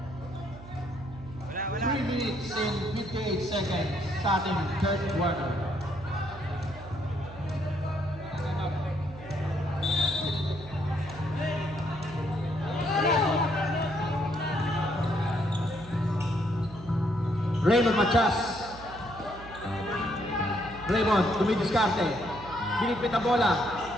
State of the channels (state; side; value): noise; right; hum, 16 dB below the sound